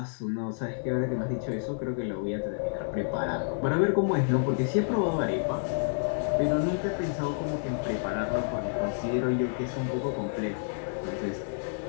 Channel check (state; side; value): silent; right; digital silence